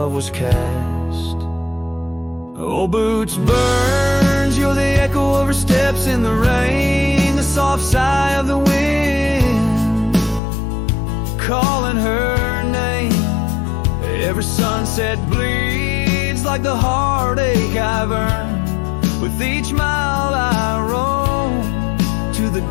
was cast. Old boots burns, you're the echo of her steps in the rain, the soft sigh of the wind calling her name. Every sunset bleeds like the heartache I've earned. With each mile I roam to the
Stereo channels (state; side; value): drops out; right; at 10.4 s